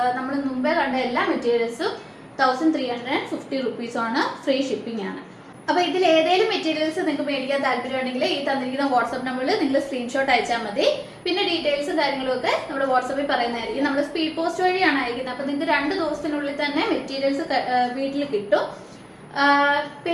നമ്മൾ മുമ്പേ കണ്ട എല്ലാ മെറ്റീരിയൽസും 1350 റുപ്പീസാണ്. ഫ്രീ ഷിപ്പിംഗ് ആണ്. അപ്പോൾ ഇതിൽ ഏതെങ്കിലും മെറ്റീരിയൽസ് നിങ്ങൾക്ക് മേടിക്കാൻ താല്പര്യമുണ്ടെങ്കിൽ ഈ തന്നിരിക്കുന്ന വാട്സ്ആപ്പ് നമ്പറിൽ നിങ്ങൾ സ്ക്രീൻഷോട്ട് അയച്ചാൽ മതി. പിന്നെ ഡീറ്റെയിൽസും കാര്യങ്ങളും ഒക്കെ നമ്മൾ വാട്സാപ്പിൽ പറയുന്നതായിരിക്കും. നമ്മൾ സ്പീഡ് പോസ്റ്റ് വഴിയാണ് അയക്കുന്നത്. അപ്പോൾ നിങ്ങൾക്ക് 2 ദിവസത്തിനുള്ളിൽ തന്നെ മെറ്റീരിയൽസ് വീട്ടിൽ കിട്ടും.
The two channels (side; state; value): both; identical; correlation 1.00